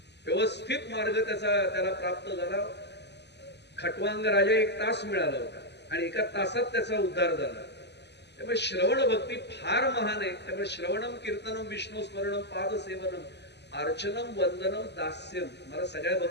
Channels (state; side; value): late; right; 0.50 ms